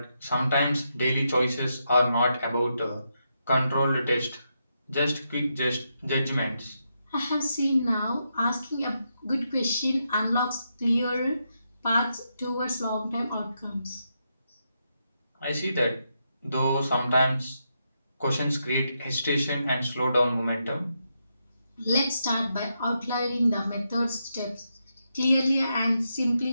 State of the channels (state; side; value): inverted; both; correlation -0.83